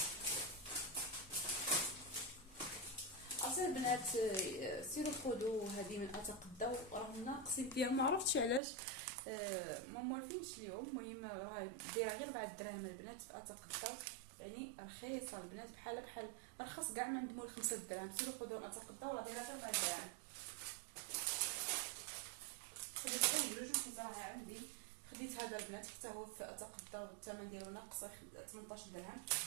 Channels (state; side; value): drops out; left; at 8.6 s